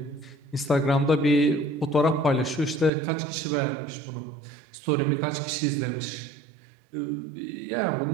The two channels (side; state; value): left; drops out; at 2.9 s